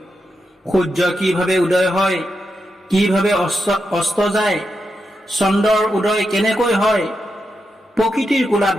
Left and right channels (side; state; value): both; normal; correlation 0.86